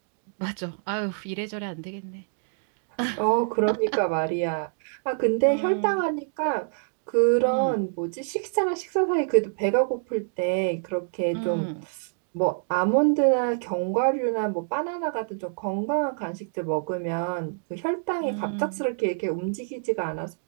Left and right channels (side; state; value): left; silent; digital silence